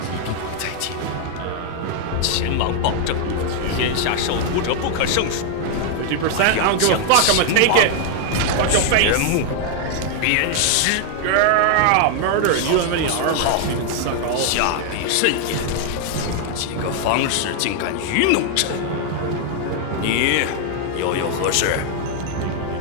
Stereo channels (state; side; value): different; both; correlation 0.00